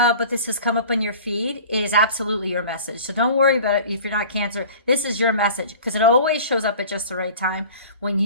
but this has come up on your feed, it is absolutely your message. So don't worry about it if you're not Cancer. This is your message because it always shows up at just the right time when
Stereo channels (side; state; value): both; inverted; correlation -0.43